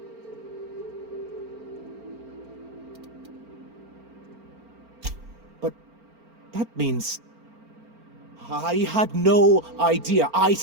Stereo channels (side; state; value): left; late; 4.4 ms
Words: But that means... I had no idea, I